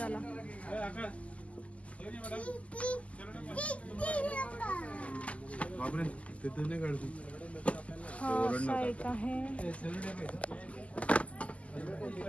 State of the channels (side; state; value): right; late; 0.066 ms